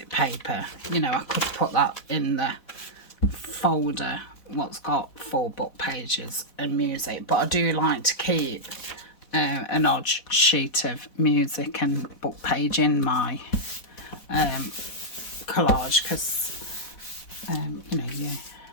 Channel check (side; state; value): right; late; 4.1 ms